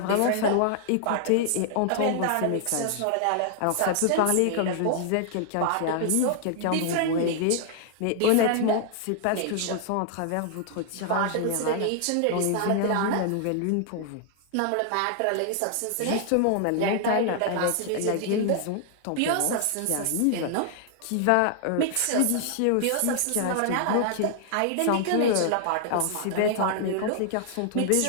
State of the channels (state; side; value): different; both; correlation 0.00